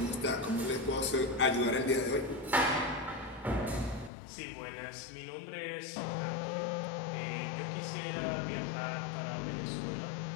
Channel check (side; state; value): right; drops out; at 4.1 s